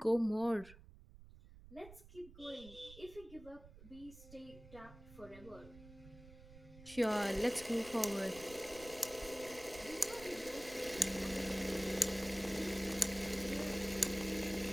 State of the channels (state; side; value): noise; right; rumble, 18 dB below the sound